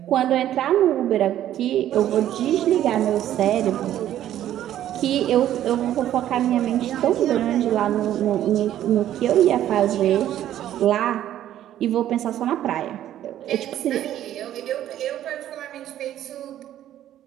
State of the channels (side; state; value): left; quieter; 12.0 dB